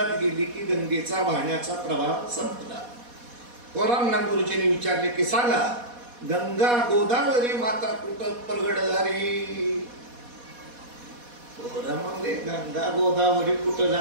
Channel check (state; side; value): late; left; 4.2 ms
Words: गेली की गंगेचा वाहण्याचा प्रवाह संपला. पोरांना गुरुजींनी विचारले की सांगा गंगा गोदावरी माता कुठं प्रगट झाली? पोरं म्हणले गंगा गोदावरी कुठं